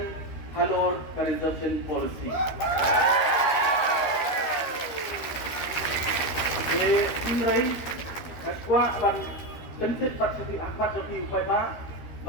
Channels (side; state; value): right; late; 13 ms